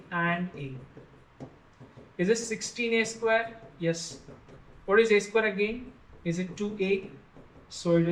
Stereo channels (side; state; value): both; identical; correlation 1.00